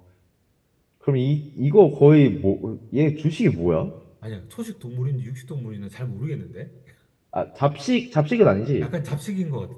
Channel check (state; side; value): identical; both; correlation 1.00